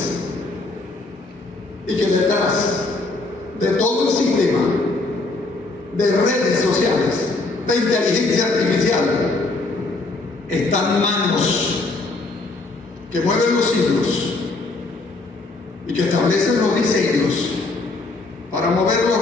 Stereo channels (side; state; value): right; quieter; 3.3 dB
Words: y que detrás de todo el sistema de redes sociales, de inteligencia artificial, están manos que mueven los hilos y que establecen los diseños para mover los